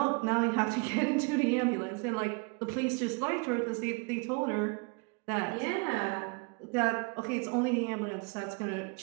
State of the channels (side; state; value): left; quieter; 31.5 dB